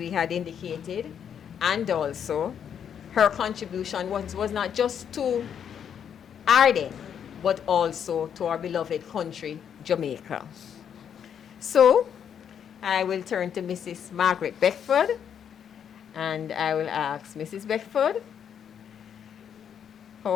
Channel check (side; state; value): right; quieter; 8.3 dB